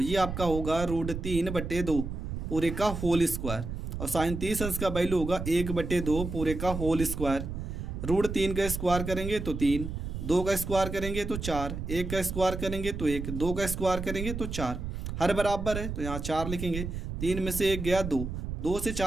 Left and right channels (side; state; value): right; noise; rumble, 5 dB below the sound